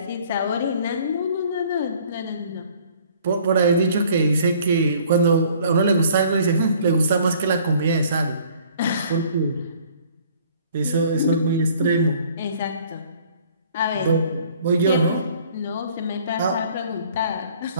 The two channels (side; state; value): both; inverted; correlation -0.55